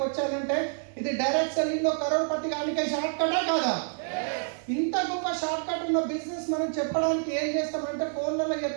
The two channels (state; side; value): silent; left; 59 dB below the other